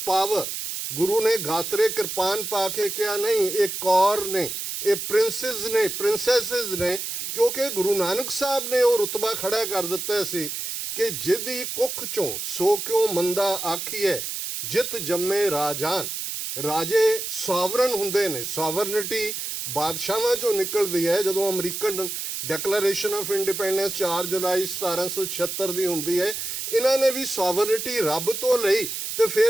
ਪਾਵਰ। ਗੁਰੂ ਨੇ ਗਾਤਰੇ ਕਿਰਪਾਨ ਪਾ ਕੇ ਕਿਹਾ ਨਹੀਂ, ਇਹ ਕੌਰ ਨੇ, ਇਹ ਪ੍ਰਿੰਸੈਸ ਨੇ, ਪ੍ਰਿੰਸੈਸਿਸ ਨੇ, ਕਿਉਂਕਿ ਗੁਰੂ ਨਾਨਕ ਸਾਹਿਬ ਨੇ ਉਹ ਰੁਤਬਾ ਖੜਾ ਕਰ ਦਿੱਤਾ ਸੀ ਕਿ ਜਿਹਦੀ ਕੁੱਖ ਚੋਂ ਸੋ ਕਿਉਂ ਮੰਦਾ ਆਖੀਏ, ਜਿਤ ਜੰਮੇ ਰਾਜਾਨ। ਰਾਜੇ ਸੋਵਰਨ ਹੁੰਦੇ ਨੇ, ਸੋਵਰਨਿਟੀ ਬਾਦਸ਼ਾਹਾਂ ਚੋਂ ਨਿਕਲਦੀ ਹੈ। ਜਦੋਂ ਅਮਰੀਕਨ ਡੈਕਲੇਰੇਸ਼ਨ ਆਫ ਇੰਡੀਪੈਂਡੈਂਸ 4 ਜੁਲਾਈ 1776 ਦੀ ਹੁੰਦੀ ਹੈ, ਇਹਨਾਂ ਨੇ ਵੀ ਸੋਵਰਨਿਟੀ ਰੱਬ ਤੋਂ ਲਈ ਤੇ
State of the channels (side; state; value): right; noise; hiss, 5 dB below the sound